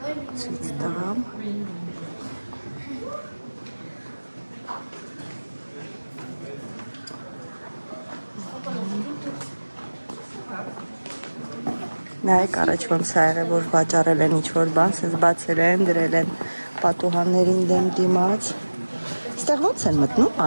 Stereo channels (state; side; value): inverted; both; correlation -1.00